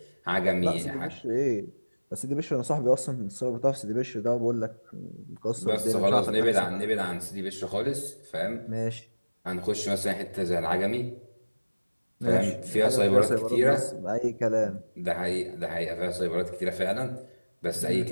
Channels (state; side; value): inverted; both; correlation -1.00